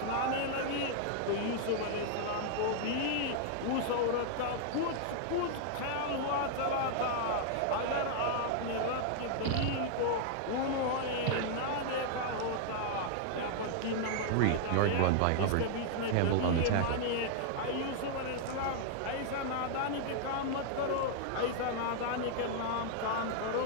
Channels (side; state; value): both; different; correlation 0.00